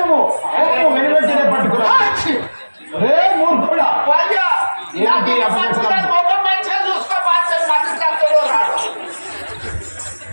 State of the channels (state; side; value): inverted; both; correlation -1.00